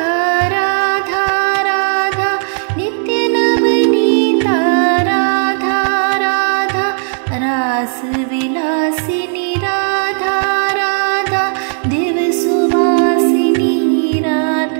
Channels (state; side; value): silent; left; 62 dB below the other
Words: राधा राधा नित्य नवनीता राधा राधा रास विलासिनी राधा राधा दिव सुवासिनी